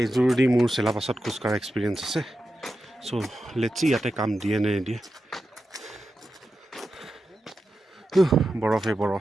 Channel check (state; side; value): normal; both; correlation 0.90